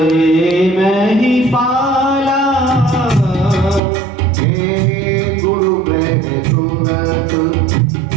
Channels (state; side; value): drops out; left; at 3.8 s